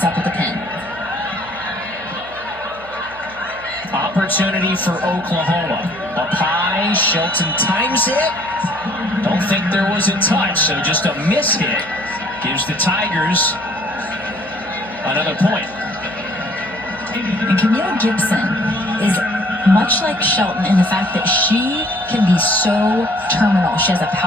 up at the pin. Opportunity for Oklahoma. Up high, Shelton times it. Don't think there was a touch, so just a miss hit gives the Tigers another point. And Camille Gibson is much like Shelton in the fact that she can be so terminal. She has a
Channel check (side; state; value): right; noise; hum, 21 dB below the sound